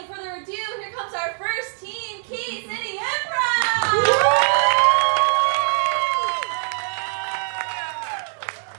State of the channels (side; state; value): left; silent; digital silence